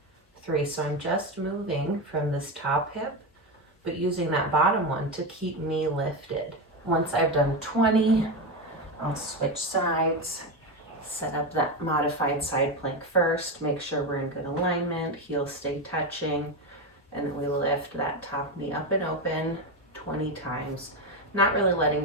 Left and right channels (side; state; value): both; normal; correlation 0.14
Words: 3. So I'm just moving from this top hip, but using that bottom one to keep me lifted. Once I've done 20, I'll switch sides, set up that modified side plank first, make sure we're in good alignment, heels stay touching, and then we lift that top knee up and open 20 times. Not really letting